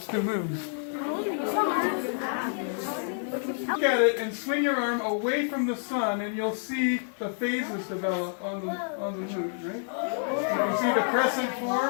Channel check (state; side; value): silent; right; 59 dB below the other